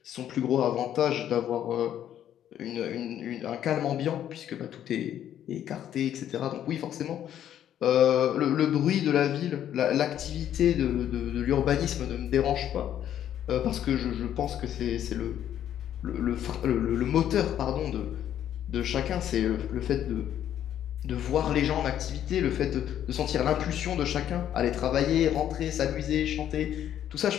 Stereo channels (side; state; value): right; quieter; 10.7 dB